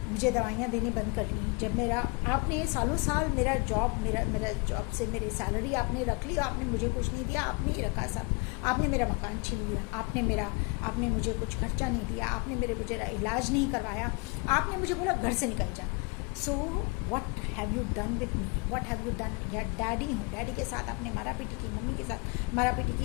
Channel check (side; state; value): right; quieter; 30.5 dB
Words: मुझे दवाइयाँ देनी बंद कर ली, जब आपने सालों साल मेरा जॉब से मेरी सैलरी आपने रख ली, आपने मुझे कुछ नहीं दिया, आपने ही रखा सब, आपने मेरा मकान छीन लिया, आपने मुझे कुछ खर्चा नहीं दिया, आपने मेरा इलाज नहीं करवाया, आपने मुझे बोला घर से निकल जा। So what have you done with me, what have you done. या डैडी हूँ, डैडी के साथ आपने मारा पीटी की, मम्मी के साथ मारा पीटी